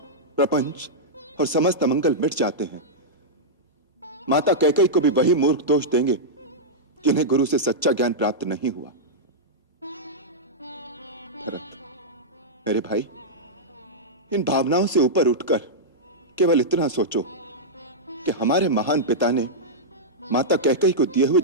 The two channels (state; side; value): normal; both; correlation -0.09